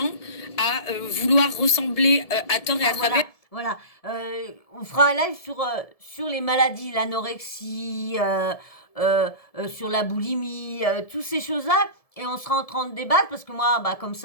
à vouloir ressembler à tort et à travers. Voilà. On fera un live sur les maladies, l'anorexie, sur la boulimie, toutes ces choses-là. Et on sera en train de débattre parce que moi, comme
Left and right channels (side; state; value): right; late; 1.7 ms